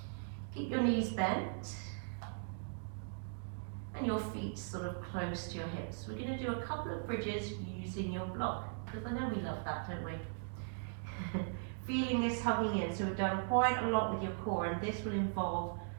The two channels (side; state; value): left; silent; digital silence